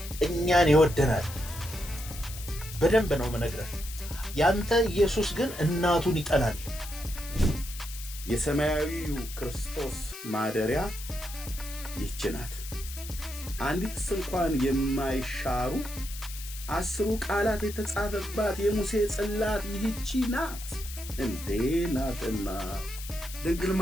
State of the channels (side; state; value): left; noise; hiss, 12 dB below the sound